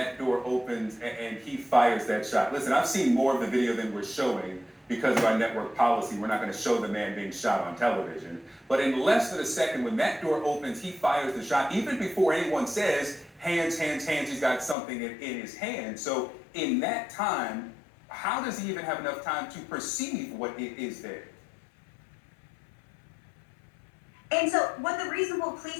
door opens and he fires that shot. Listen, I've seen more of the video than we're showing because of our network policy. We're not going to show the man being shot on television. But in less than a second, when that door opens, he fires the shot, even before anyone says, hands, hands, hands, he's got something in his hand. So in that time, how does he even have enough time to perceive what is there? And so what the reasonable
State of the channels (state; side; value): drops out; right; at 14.8 s